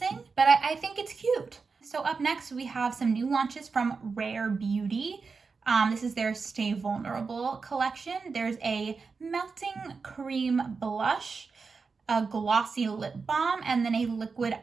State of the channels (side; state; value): left; quieter; 4.8 dB